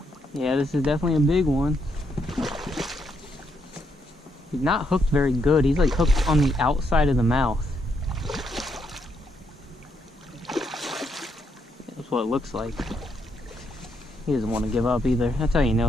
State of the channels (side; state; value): both; normal; correlation 0.77